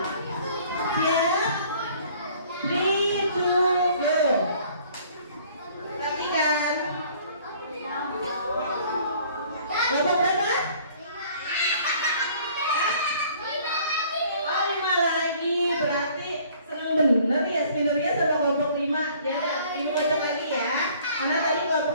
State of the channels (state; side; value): inverted; both; correlation -0.55